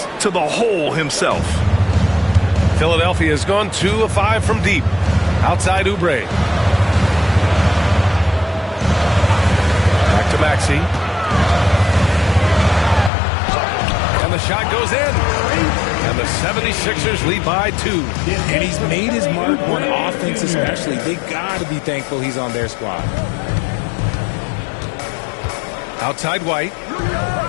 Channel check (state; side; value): drops out; right; at 13.1 s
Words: to the hole himself. Philadelphia has gone 2 of 5 from deep. Outside Oubre. Back to Maxey. And the shot goes in. And the 76ers lead by 2. And he's made his mark on offense especially. They got to be thankful he's on their squad. Outside White.